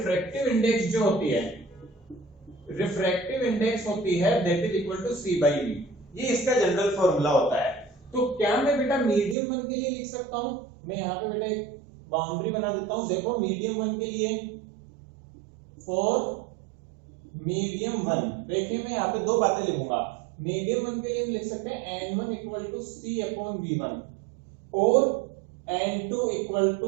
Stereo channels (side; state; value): left; drops out; at 9.3 s